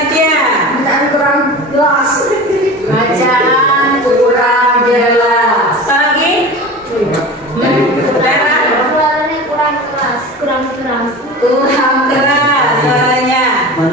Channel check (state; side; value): normal; both; correlation 0.34